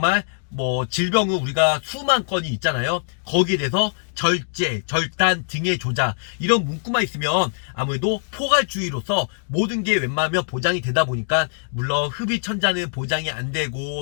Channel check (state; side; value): silent; right; digital silence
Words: 질병은 우리가 수만 건이 있잖아요. 거기에 대해서 절제, 절단, 등의 조작 이런 문구만 있으면 아무래도 포괄주의로서 모든 게 웬만하면 보장이 되다 보니까 물론 흡입천자는 보장이 안